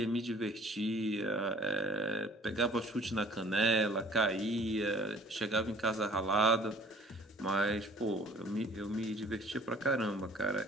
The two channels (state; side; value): normal; both; correlation 0.53